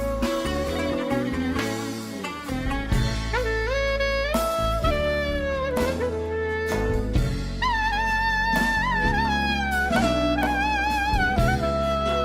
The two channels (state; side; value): identical; both; correlation 1.00